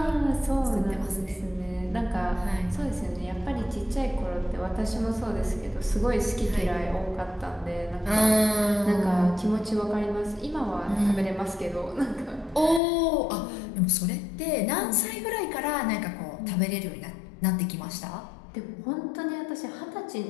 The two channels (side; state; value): right; drops out; at 12.8 s